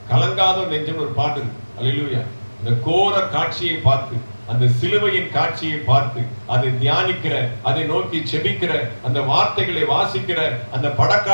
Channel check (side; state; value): both; inverted; correlation -1.00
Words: கலங்காதோ நெஞ்சம் ஒரு பாட்டு. அல்லேலூயா. இந்த கோர காட்சியை பார்த்து, அந்த சிலுவையின் காட்சியை பார்த்து அதை தியானிக்கிற, அதை நோக்கி செபிக்கிற, அந்த வார்த்தைகளை வாசிக்கிற, அந்த